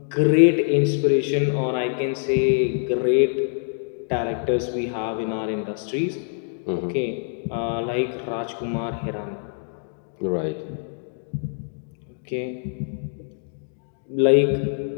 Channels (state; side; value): silent; right; digital silence